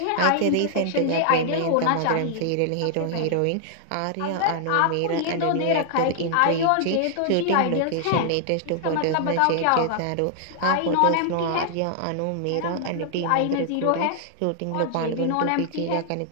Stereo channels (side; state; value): both; different; correlation 0.00